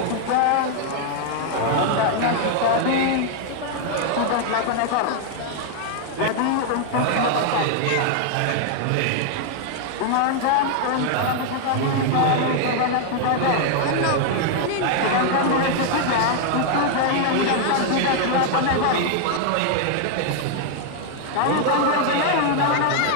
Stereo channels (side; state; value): both; different; correlation 0.00